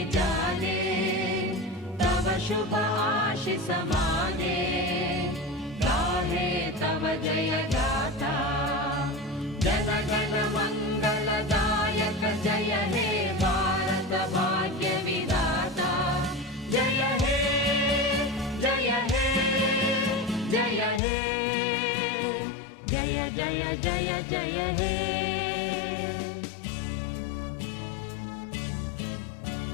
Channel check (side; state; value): right; drops out; at 21.0 s